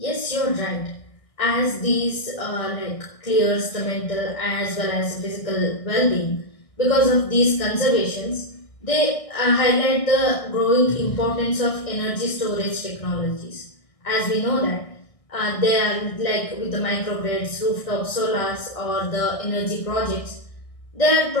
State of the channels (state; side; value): late; right; 1.6 ms